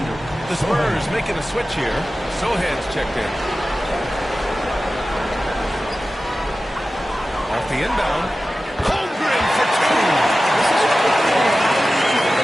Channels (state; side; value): normal; both; correlation 0.95